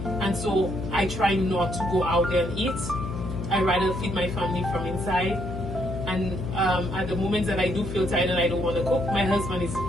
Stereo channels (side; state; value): left; noise; hum, 6 dB below the sound